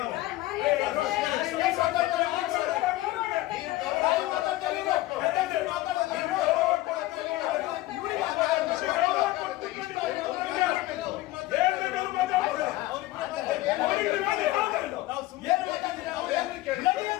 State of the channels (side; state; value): right; quieter; 17.4 dB